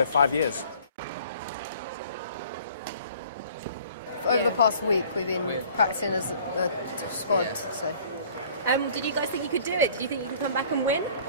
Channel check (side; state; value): both; inverted; correlation -0.52